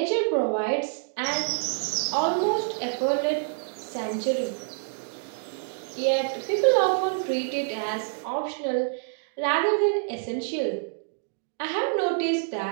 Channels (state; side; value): silent; left; digital silence